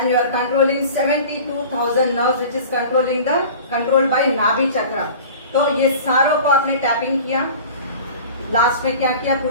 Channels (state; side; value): inverted; both; correlation -0.40